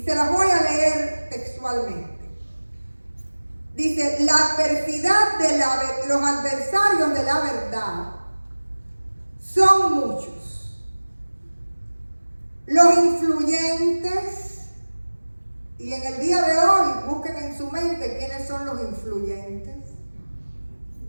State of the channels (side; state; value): both; inverted; correlation -1.00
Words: se las voy a leer textualmente. Dice, la adversidad de los adversarios de la verdad son muchos. Los influyentes, y en el día de hoy busquen en su mente quiénes son los influyentes.